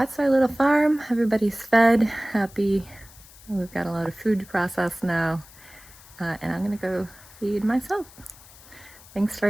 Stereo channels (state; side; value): noise; left; hiss, 22 dB below the sound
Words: our little farm. Everybody's fed, happy. We've got a lot of food to process now. And I'm gonna go feed myself. Thanks